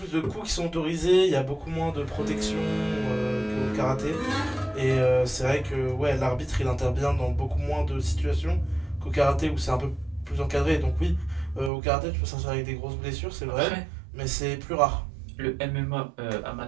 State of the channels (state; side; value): drops out; left; at 11.7 s